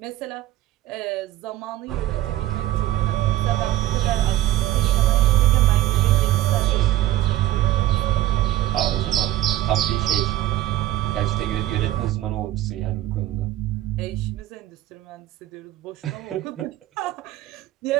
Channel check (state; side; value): quieter; left; 14.7 dB